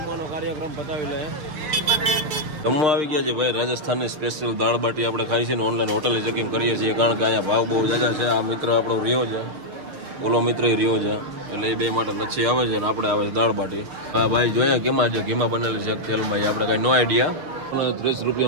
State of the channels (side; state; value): left; late; 6.6 ms